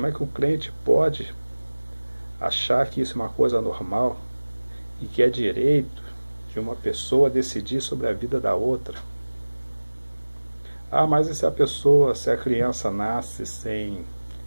é que o crente pode achar que isso é uma coisa normal e que é direito de uma pessoa decidir sobre a vida da outra? Ah, mas e se a criança nasce sem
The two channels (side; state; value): both; inverted; correlation -1.00